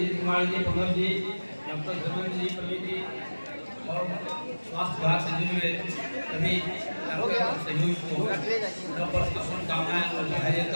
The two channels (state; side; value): inverted; both; correlation -1.00